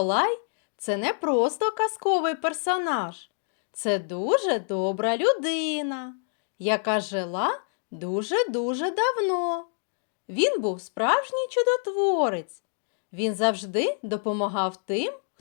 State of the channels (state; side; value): silent; right; digital silence